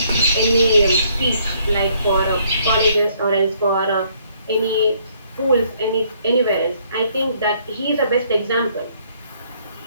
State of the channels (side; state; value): both; inverted; correlation -0.66